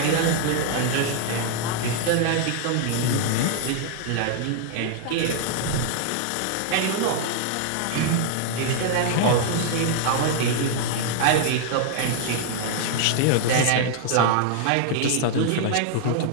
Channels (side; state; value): both; different; correlation 0.00